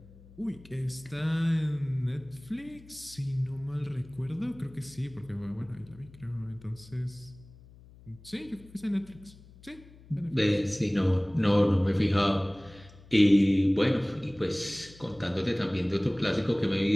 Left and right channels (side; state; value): left; noise; hum, 22 dB below the sound